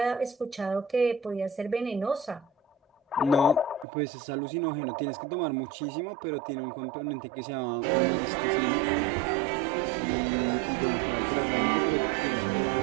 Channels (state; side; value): drops out; left; at 3.9 s